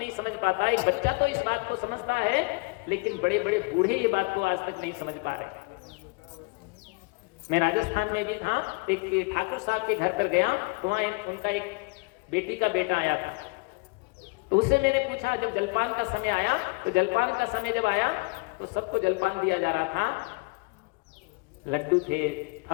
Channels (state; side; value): quieter; right; 29.2 dB